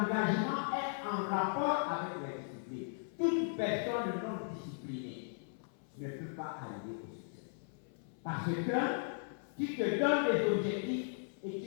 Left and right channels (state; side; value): silent; right; 53 dB below the other